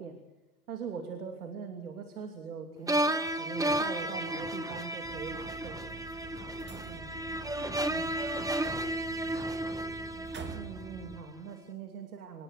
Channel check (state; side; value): normal; both; correlation 0.42